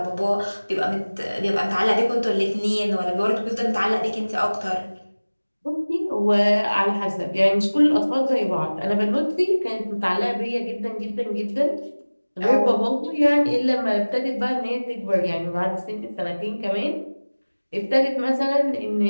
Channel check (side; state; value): both; inverted; correlation -1.00